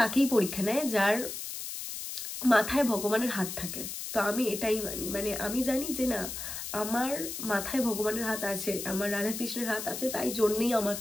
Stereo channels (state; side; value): noise; left; hiss, 7 dB below the sound